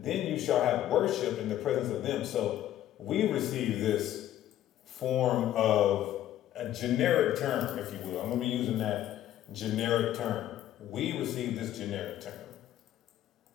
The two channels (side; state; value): right; quieter; 12.5 dB